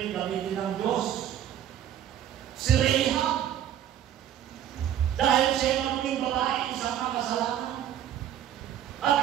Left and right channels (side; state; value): left; quieter; 10.7 dB